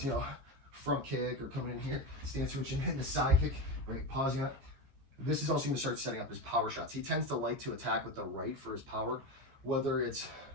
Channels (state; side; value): late; left; 15 ms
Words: you know, front kick or coming in here, stance switching, hitting the side kick, right, pausing up. This is also going to start setting up his power shots. He tends to like to attack with the right for his power, whether it's